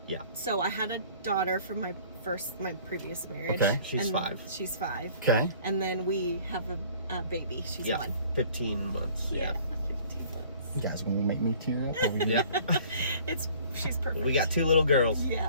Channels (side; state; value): both; inverted; correlation -0.52